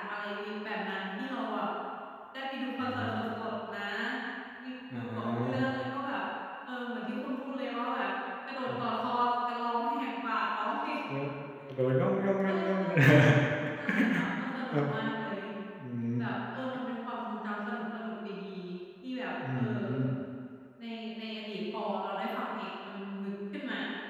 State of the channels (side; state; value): both; identical; correlation 1.00